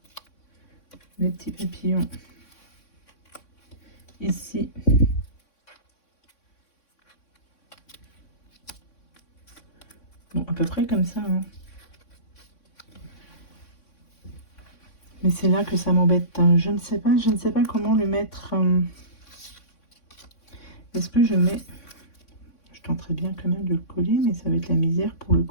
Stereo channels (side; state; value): right; late; 3.6 ms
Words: les petits papillons ici. Bon, à peu près comme ça. Hein. Mais c'est là que ça m'embête. Hein. Je ne sais pas comment le mettre. Est-ce que je mets... Je tenterai bien quand même de le coller, mais ça va être la misère pour le